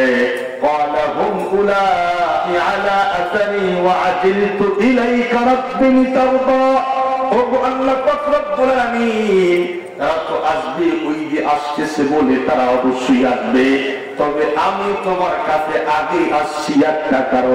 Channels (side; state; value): both; identical; correlation 1.00